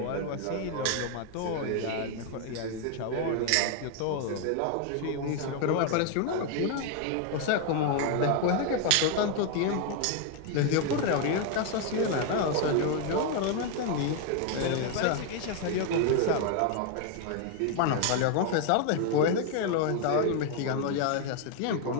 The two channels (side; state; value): both; different; correlation 0.01